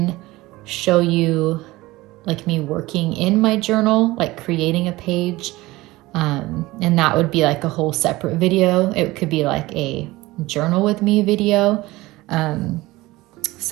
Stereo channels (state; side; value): quieter; left; 19.5 dB